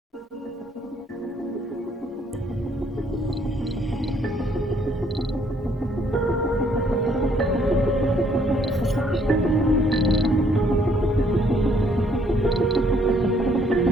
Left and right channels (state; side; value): normal; both; correlation 0.66